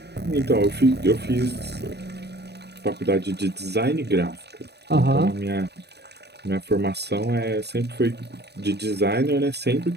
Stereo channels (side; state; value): left; late; 0.48 ms